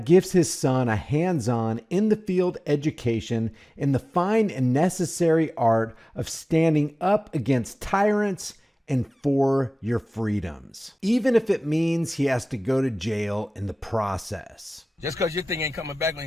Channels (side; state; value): both; normal; correlation 0.98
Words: gives his son a hands-on, in-the-field education in the fine and necessary art of standing up against tyrants and for your freedoms, even if it means he has to go to jail in the process. Just because your thing ain't coming back on